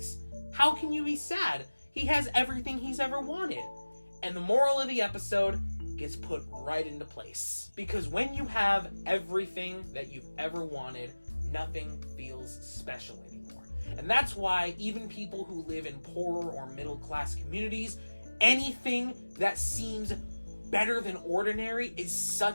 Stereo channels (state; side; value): inverted; both; correlation -1.00